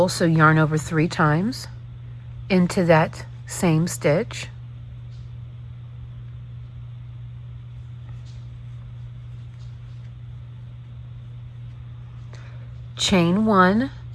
so yarn over 3 times into that same stitch. Chain 1,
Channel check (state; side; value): identical; both; correlation 1.00